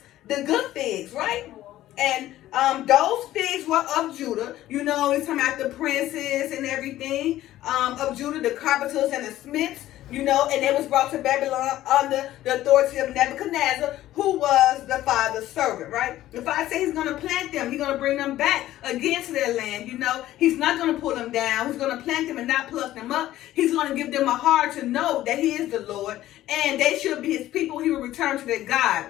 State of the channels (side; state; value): right; quieter; 14.2 dB